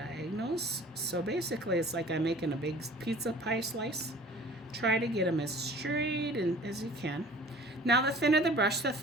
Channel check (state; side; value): normal; both; correlation 0.47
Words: So basically it's like I'm making a big pizza pie slice. Try to get them as straight as you can. Now the thinner the brush, the